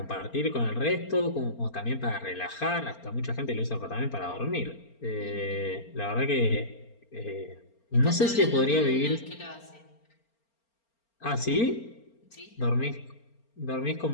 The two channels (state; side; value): late; right; 4.4 ms